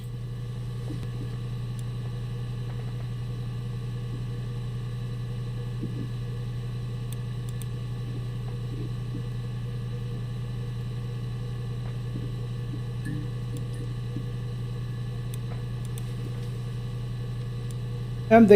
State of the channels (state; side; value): identical; both; correlation 1.00